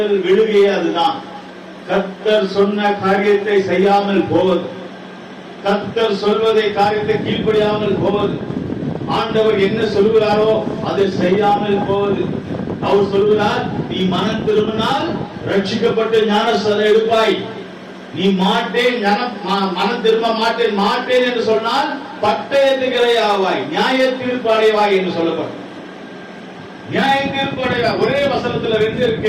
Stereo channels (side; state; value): both; identical; correlation 1.00